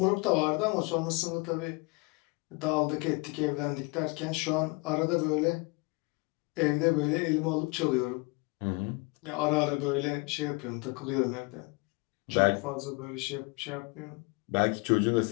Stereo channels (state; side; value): quieter; right; 28.6 dB